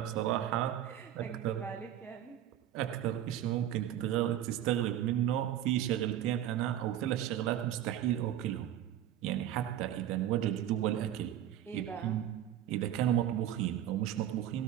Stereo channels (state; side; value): quieter; left; 11.4 dB